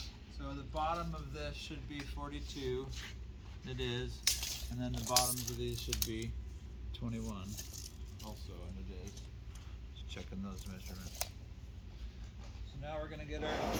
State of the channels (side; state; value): both; identical; correlation 1.00